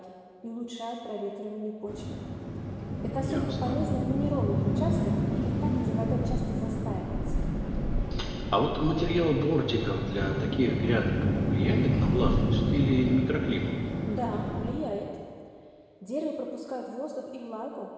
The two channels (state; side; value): identical; both; correlation 1.00